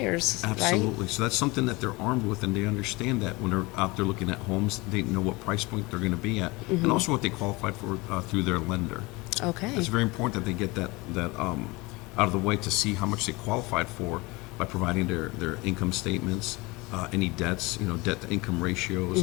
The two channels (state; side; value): quieter; right; 24.0 dB